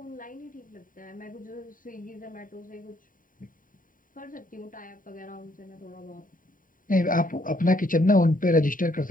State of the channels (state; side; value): late; right; 0.39 ms